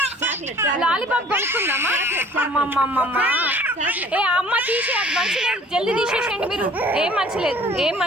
లాలీపాప్ కొనుక్కుందామా? అమ్మమ్మమ్మ ఏ అమ్మ తీసే, అది మంచి లేదు, జల్దీ తీసేసేయండి మీరు. ఏం మంచి లేదు, ఏం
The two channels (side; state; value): both; normal; correlation 0.51